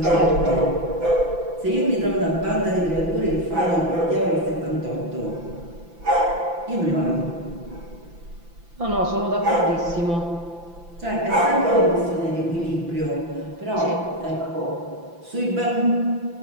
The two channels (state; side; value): late; left; 5.9 ms